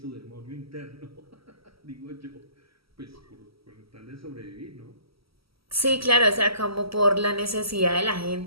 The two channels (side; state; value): left; late; 0.75 ms